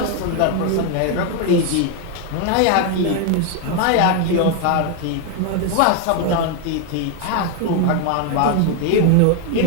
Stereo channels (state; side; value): different; both; correlation 0.01